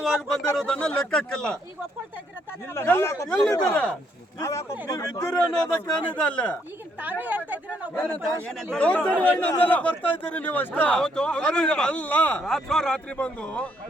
ಬಂದಿರೋದನ್ನ ಲೆಕ್ಕಕ್ಕಿಲ್ಲ. ಈಗ ಒಪ್ಕೊಳ್ತಾ ಇದ್ದೀರಾ ತಾನೇ? ಎಲ್ಲಿದ್ದೀರಾ ನೀವು? ಇದ್ದೀರಿ ಅನ್ನೋದಕ್ಕೆ ಏನಿದೆ ಅಲ್ಲ. ಈಗ ತಾವೇ ಹೇಳ್ತಾ ಇದ್ದೀರಾ ನಾವು ದೌರ್ಜನ್ಯವಾಗಿ ನಮ್ಮೆಲ್ಲ ಬರ್ತಾ ಇದ್ದೀರಿ ನೀವು ಅಷ್ಟೇ. ಅಲ್ಲ, ರಾತ್ರಿ ಬಂದು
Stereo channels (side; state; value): both; normal; correlation 0.72